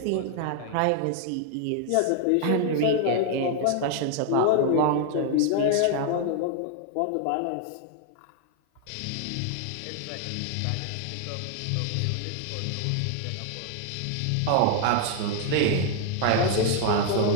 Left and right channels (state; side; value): different; both; correlation 0.00